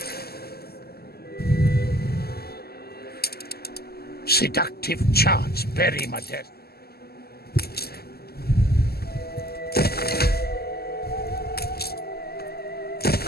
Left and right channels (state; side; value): late; right; 0.46 ms